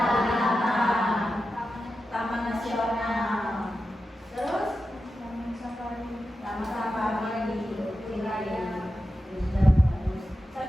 Taman Nasional. Terus Taman Safari.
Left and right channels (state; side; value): normal; both; correlation 0.91